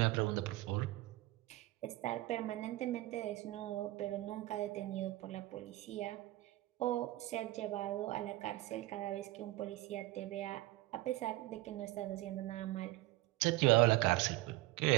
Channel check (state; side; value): quieter; left; 18.4 dB